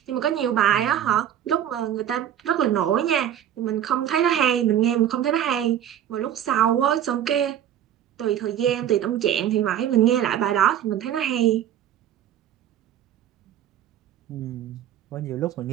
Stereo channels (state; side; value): quieter; left; 10.6 dB